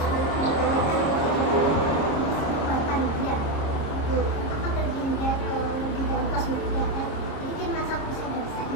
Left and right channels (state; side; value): late; right; 26 ms